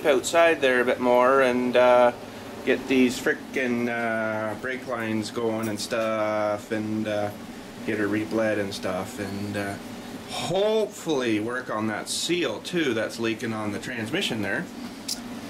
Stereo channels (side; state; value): both; identical; correlation 1.00